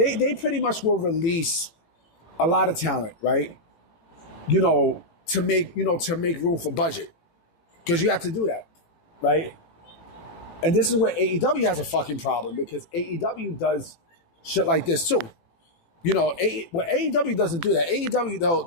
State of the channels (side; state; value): right; late; 18 ms